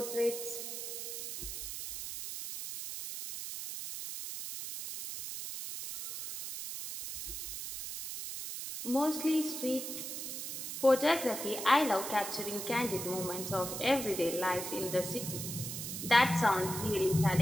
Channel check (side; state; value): right; noise; hiss, 6 dB below the sound